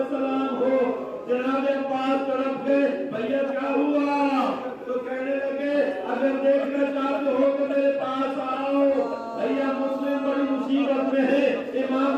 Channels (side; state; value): both; identical; correlation 1.00